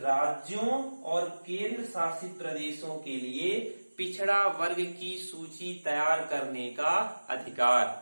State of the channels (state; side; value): inverted; both; correlation -1.00